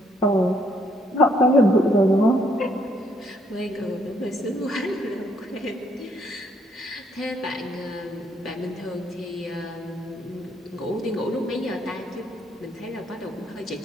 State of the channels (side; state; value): both; normal; correlation 0.69